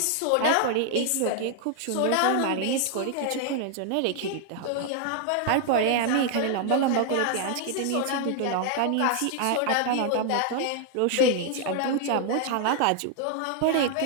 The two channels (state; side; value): different; both; correlation 0.00